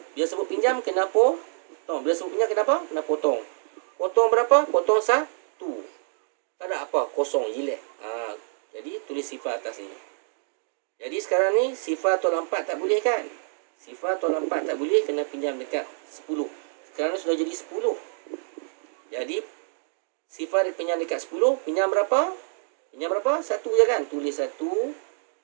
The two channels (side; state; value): left; silent; digital silence